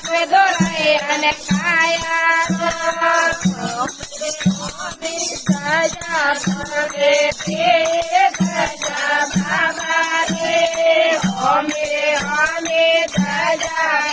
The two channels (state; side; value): identical; both; correlation 1.00